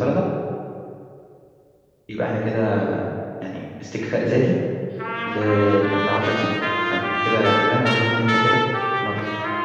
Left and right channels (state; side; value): identical; both; correlation 1.00